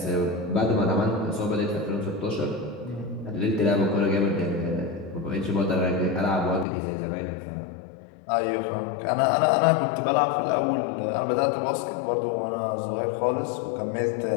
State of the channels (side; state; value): right; drops out; at 6.7 s